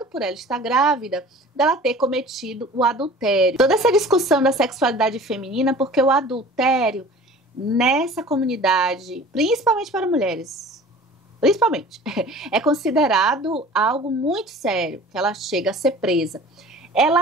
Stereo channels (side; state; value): both; normal; correlation 0.43